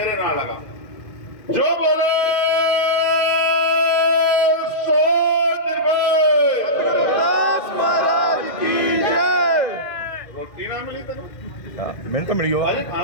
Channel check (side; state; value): right; late; 2.1 ms